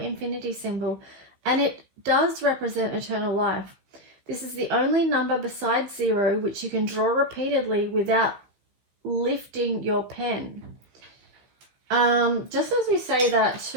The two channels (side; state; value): left; late; 16 ms